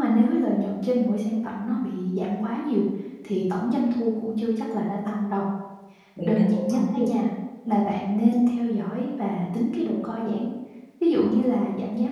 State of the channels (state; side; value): identical; both; correlation 1.00